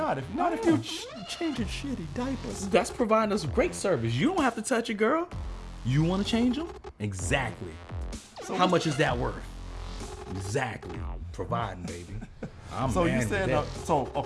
If you're changing shitty diapers. That's providing us great service. You don't have to touch it, girl. You want to change them? Exactly. So how much is that worth? Exactly. Providing, baby. I'm so man you with said that.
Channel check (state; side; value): identical; both; correlation 1.00